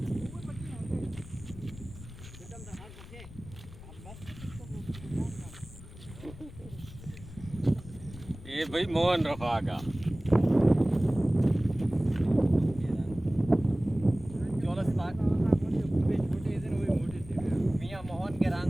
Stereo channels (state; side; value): noise; left; rumble, 15 dB below the sound